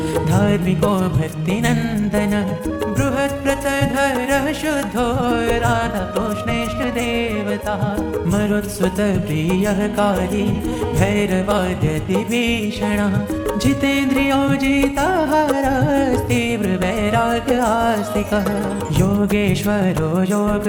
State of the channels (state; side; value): identical; both; correlation 1.00